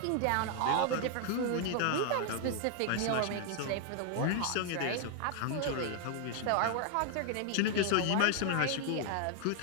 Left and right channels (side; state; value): both; different; correlation 0.00